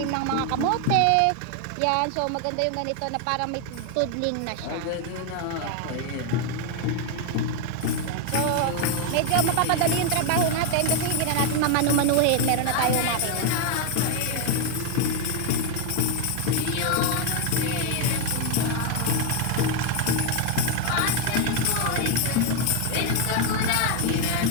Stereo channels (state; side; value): different; both; correlation 0.01